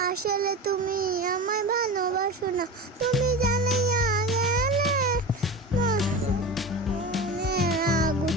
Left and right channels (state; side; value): normal; both; correlation 0.28